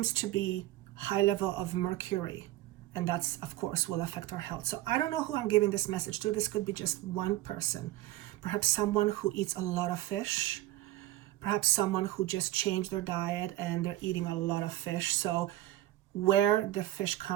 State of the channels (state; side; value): quieter; left; 15.6 dB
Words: to be high level of mercury, and that's, of course, will affect our health. So I don't know who I'm giving this message to. This could be just one person, perhaps someone who eats a lot of fish, perhaps someone who just changed their diet and they're eating a lot of fish. So where the fish